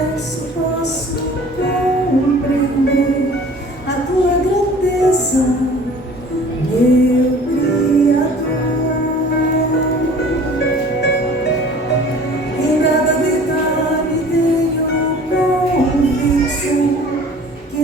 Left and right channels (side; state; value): both; normal; correlation 0.47